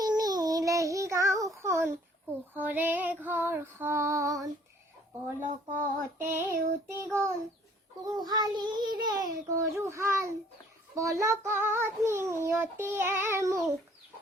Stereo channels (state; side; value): normal; both; correlation 0.58